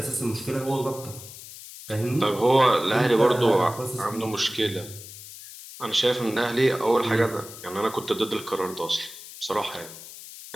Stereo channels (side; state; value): left; noise; hiss, 15 dB below the sound